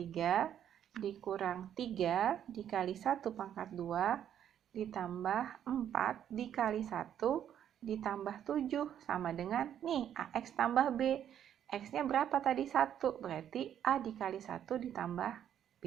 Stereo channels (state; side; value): quieter; left; 9.9 dB